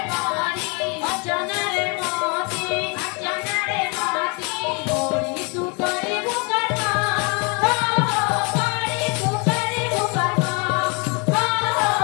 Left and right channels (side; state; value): right; quieter; 32.1 dB